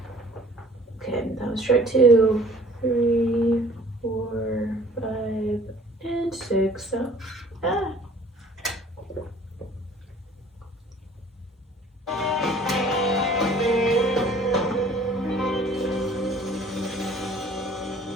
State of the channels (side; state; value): both; normal; correlation 0.52